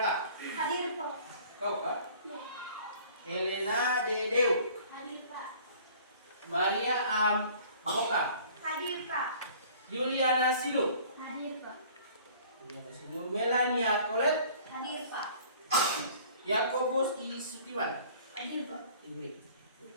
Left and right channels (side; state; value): both; inverted; correlation -0.50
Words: Hadir Pak. Kau kah? Ya. Helena D. Deu. Hadir Pak. Maria A. Boka. Hadir Pak. Juliana Sinu. Hadir Pak. Melania Colet. Hadir Pak. Yakobus I. Sutiwan. Hadir Pak.